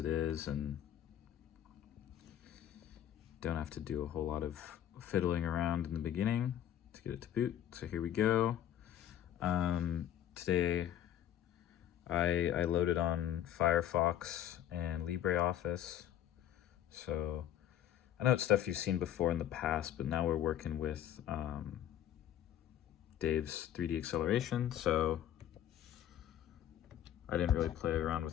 is and don't have to do a whole lot of fiddling around in the beginning to get it to boot. So here we go. Today I loaded on Firefox and LibreOffice. So I know it's stuff you've seen before in the past, but now we're working with Dave's 3D acceleration. So I didn't really play around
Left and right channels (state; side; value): quieter; right; 10.9 dB